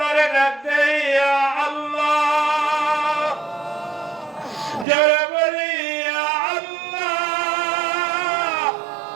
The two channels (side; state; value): left; drops out; at 4.9 s